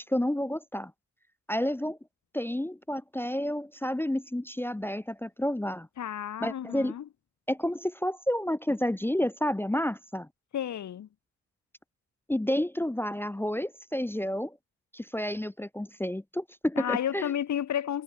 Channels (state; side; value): normal; both; correlation 0.78